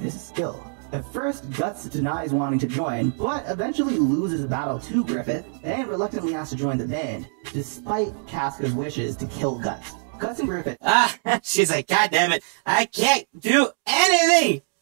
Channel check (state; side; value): silent; left; 63 dB below the other